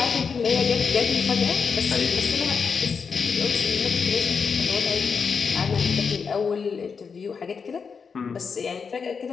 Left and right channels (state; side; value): quieter; right; 5.7 dB